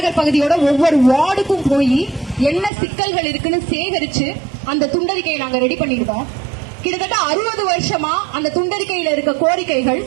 பகுதியோட ஒவ்வொரு வார்டுக்கும் போய் என்ன சிக்கல்கள் இருக்குன்னு சேகரிச்சு அந்த துண்டறிக்கையை நாங்க ரெடி பண்ணிருக்கோம். கிட்டத்தட்ட 60 வருஷமா அந்த துண்டறிக்கையில இருக்க கோரிக்கைகள்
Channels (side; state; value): left; drops out; at 2.7 s